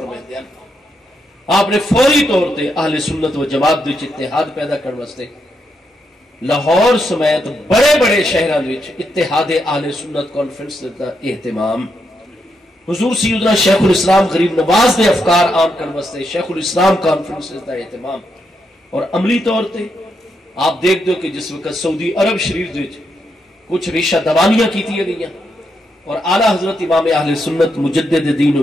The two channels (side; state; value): both; normal; correlation 0.81